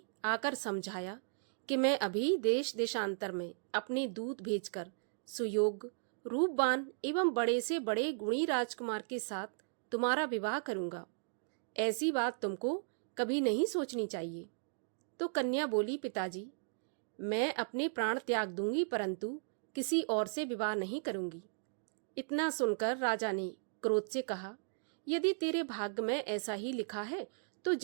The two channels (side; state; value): left; silent; digital silence